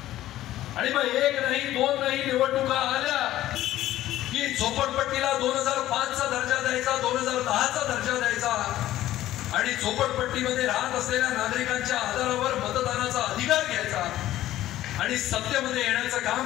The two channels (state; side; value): quieter; right; 14.2 dB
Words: आणि मग 1 नाही 2 नाही निवडणुका आल्या की झोपडपट्टीला 2005चा दर्जा द्यायचा, 2010चा दर्जा द्यायचा आणि झोपडपट्टीमध्ये राहत असलेल्या नागरिकांच्या आधारावर मतदानाचा अधिकार घ्यायचा आणि सत्तेमध्ये येण्याचं